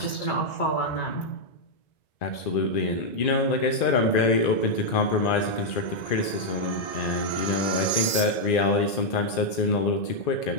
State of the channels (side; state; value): right; late; 1.9 ms